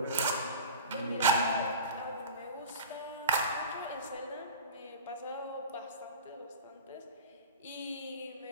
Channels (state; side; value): inverted; both; correlation -0.33